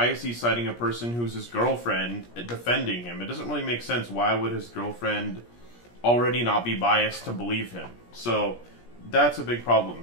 is he citing a person who's his girlfriend defending him? It doesn't really make sense. Why would his girlfriend already not be biased to believe him? So that's a big problem.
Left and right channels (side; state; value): right; late; 17 ms